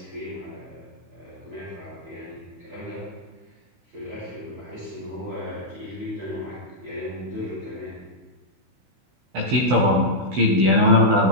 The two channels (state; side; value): late; left; 16 ms